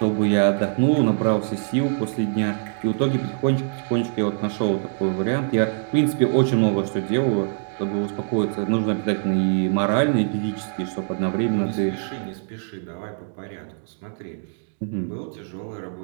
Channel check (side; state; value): left; silent; 63 dB below the other